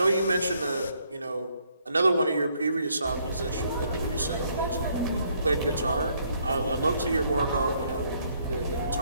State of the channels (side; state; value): both; inverted; correlation -0.69